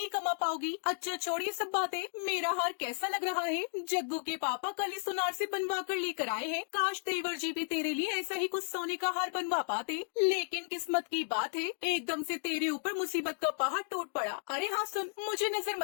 कमा पाओगी। अच्छा छोड़िए सब बातें, मेरा हार कैसा लग रहा है। जग्गू के पापा कल ही सुनार से बनवा कर लेकर आए हैं। काश देवर जी भी तेरे लिए ऐसा ही कुछ सोने का हार बनवा पाते। लेकिन किस्मत की बात है, एकदम से तेरे ऊपर मुसीबत का पहाड़ टूट पड़ा। अरे हाँ सुन, मुझे नजर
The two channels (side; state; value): right; silent; 55 dB below the other